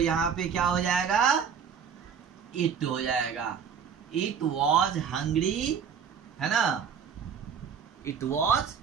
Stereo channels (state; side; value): quieter; left; 7.1 dB